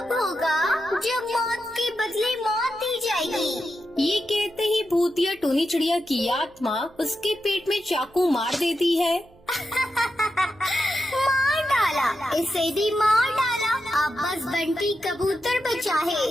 भूतिया टूनी चिड़िया की आत्मा उसके पेट में चाकू मार देती है। मार डाला, इसे भी मार डाला। अब बस बंटी कबूतर बचा है,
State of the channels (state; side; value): noise; right; hum, 28 dB below the sound